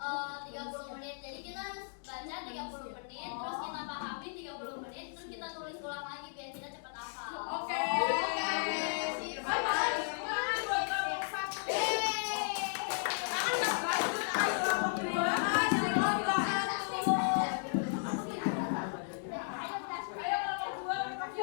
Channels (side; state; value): right; silent; digital silence